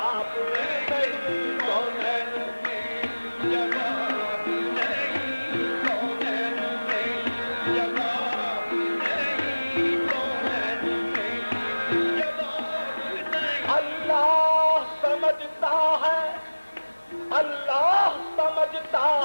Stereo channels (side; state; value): both; inverted; correlation -1.00